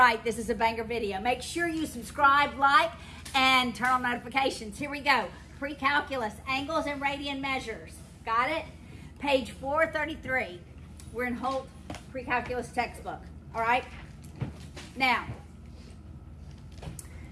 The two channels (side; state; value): both; identical; correlation 1.00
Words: this is a banger video. Make sure you subscribe, like, and turn on notifications. Here we go. Precalculus, angles and radian measures. Got it? Page 433. We're in Holt Precalculus textbook. All right? Now,